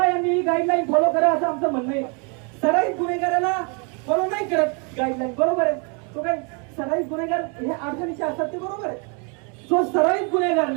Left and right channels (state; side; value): quieter; left; 35.3 dB